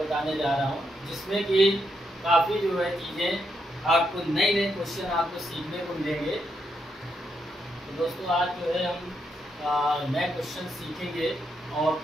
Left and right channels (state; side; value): normal; both; correlation 0.80